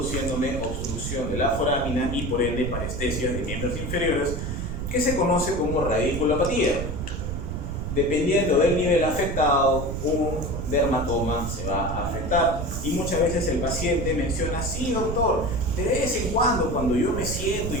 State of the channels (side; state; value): right; noise; rumble, 4 dB below the sound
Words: obstrucción de la forámina y por ende parestesia de miembros inferiores, que se conoce como radiculopatía. Dependiendo del nivel afectado, un dermatoma se va a afectar. Y muchas veces el paciente menciona: sí, doctor, de vez en cuando yo me siento